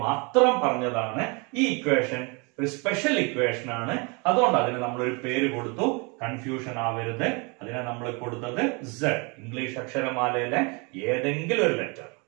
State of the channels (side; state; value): left; quieter; 30.5 dB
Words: മാത്രം പറഞ്ഞതാണ്. ഈ ഇക്വേഷൻ ഒരു സ്പെഷ്യൽ ഇക്വേഷൻ ആണ്. അതുകൊണ്ട് അതിന് നമ്മൾ ഒരു പേര് കൊടുത്തു. കൺഫ്യൂഷൻ ആവരുത്. അതിനെ നമ്മൾ കൊടുത്തത് z, ഇംഗ്ലീഷ് അക്ഷരമാലയിലെ ഏതെങ്കിലും ഒരു ലെറ്റർ.